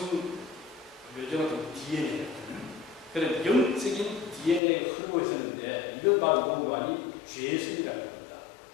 요즘은 좀 DNA 같은 그런 영적인 DNA가 흐르고 있었는데, 이걸 바로 뭔가니 죄성이라는 겁니다.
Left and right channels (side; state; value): right; drops out; at 4.6 s